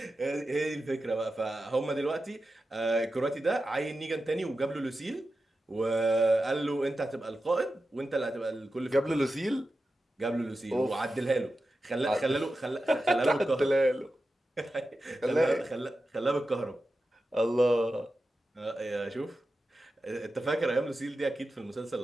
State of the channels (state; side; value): normal; both; correlation 0.92